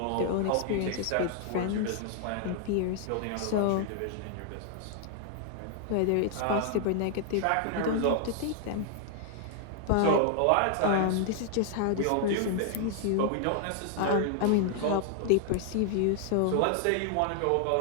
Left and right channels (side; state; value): both; different; correlation 0.00